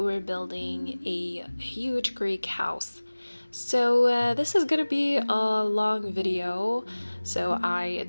building a huge Greek house. So this is gonna be a long video, so I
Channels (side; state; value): both; inverted; correlation -1.00